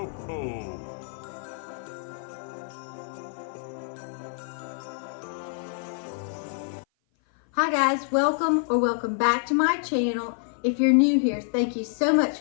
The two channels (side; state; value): right; silent; 56 dB below the other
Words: Cocoa. Hi guys, welcome back to my channel. If you're new here, thank you so much